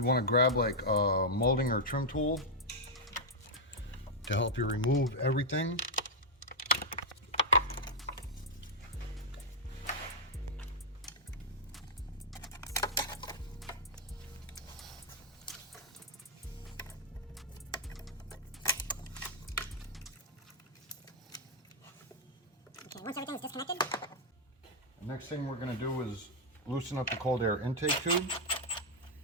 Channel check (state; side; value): normal; both; correlation -0.04